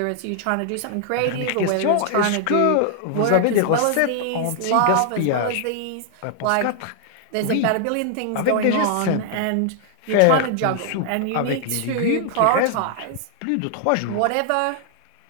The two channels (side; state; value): both; different; correlation 0.00